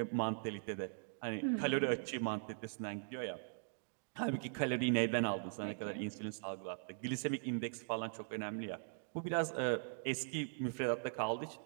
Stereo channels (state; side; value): silent; left; digital silence